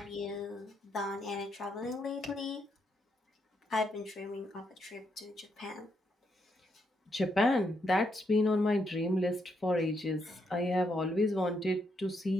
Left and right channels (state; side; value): normal; both; correlation 0.78